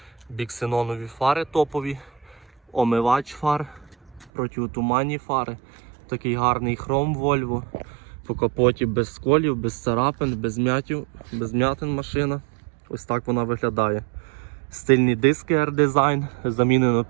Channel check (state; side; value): drops out; left; at 4.3 s